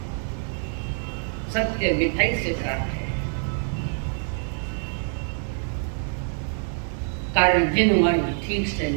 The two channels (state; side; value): silent; left; 61 dB below the other